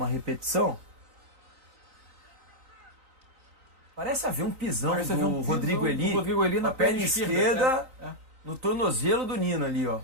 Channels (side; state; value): left; late; 3.9 ms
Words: repetição. Parece haver um pisão do Rodrigo Eli na perna esquerda, no tornozelo do Nino ali, ó.